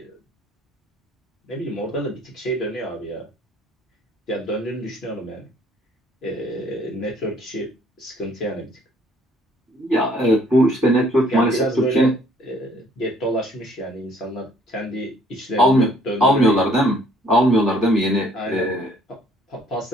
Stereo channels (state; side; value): normal; both; correlation 0.61